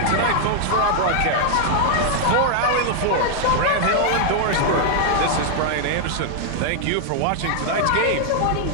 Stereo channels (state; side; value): different; both; correlation 0.00